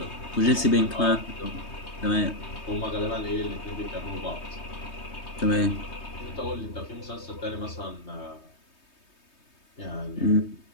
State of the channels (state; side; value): late; right; 3.2 ms